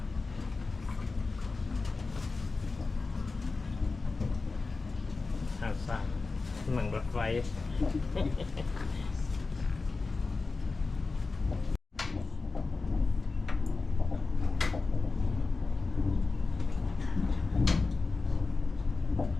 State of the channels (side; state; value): right; quieter; 3.9 dB